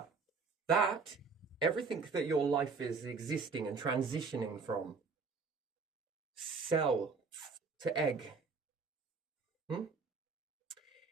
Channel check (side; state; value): left; quieter; 4.7 dB